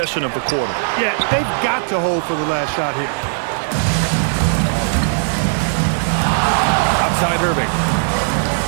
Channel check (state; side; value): silent; left; 65 dB below the other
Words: of the quarter. Yeah, they've got to hold for the last shot here. Outside Irving.